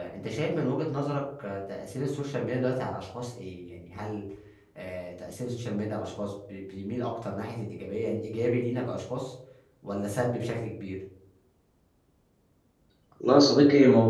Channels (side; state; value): both; identical; correlation 1.00